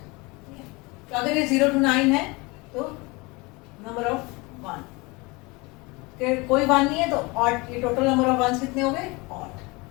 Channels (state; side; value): quieter; right; 25.5 dB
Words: तो अगर ये 0 to 9 है तो number of 1, कोई 1 नहीं है तो odd, ये total number of ones कितने हो गए? Odd.